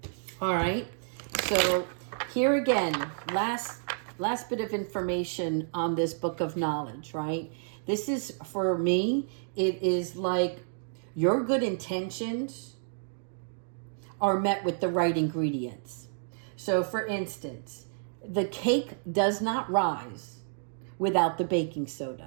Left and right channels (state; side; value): silent; left; digital silence